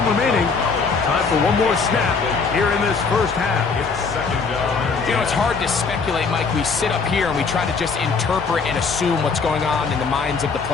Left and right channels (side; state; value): right; quieter; 4.9 dB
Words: remaining. Time for one more snap here in this first half. You know, it's hard to speculate, Mike. We sit up here and we try to just interpret and assume what's going on in the minds of the